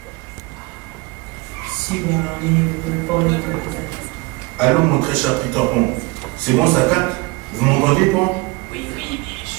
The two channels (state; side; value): quieter; left; 24.9 dB